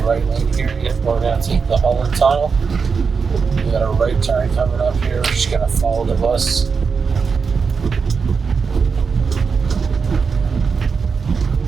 lane here. We're going to take the Holland Tunnel. We got a right turn coming up here. We're just gonna follow the bus.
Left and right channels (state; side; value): quieter; left; 5.4 dB